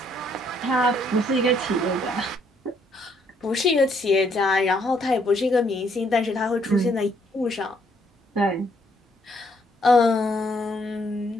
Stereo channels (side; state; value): both; normal; correlation 0.69